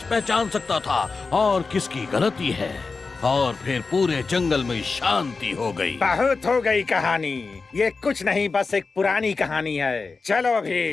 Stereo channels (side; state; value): right; quieter; 4.3 dB